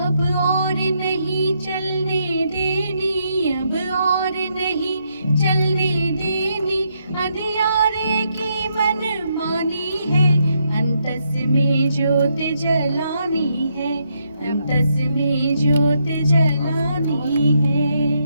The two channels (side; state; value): both; inverted; correlation -0.78